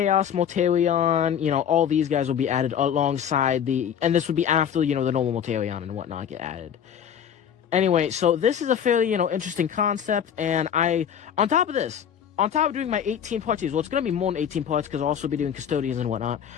Mortarion, all these guys will be added alongside and this would be after, the normal Mortarion and whatnot get added. Anyway, so this is a fairly, interesting concept, and on top of doing my 18-part series, well, it's going to be more than 18 parts, because I'll also be doing Custodians and whatnot,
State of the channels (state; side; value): quieter; right; 8.7 dB